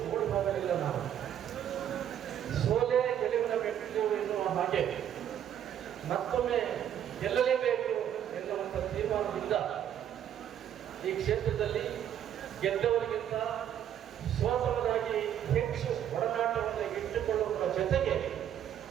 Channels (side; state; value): left; quieter; 10.1 dB